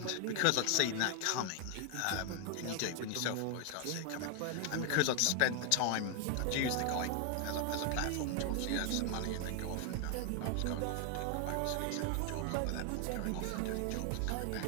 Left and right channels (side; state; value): both; different; correlation 0.00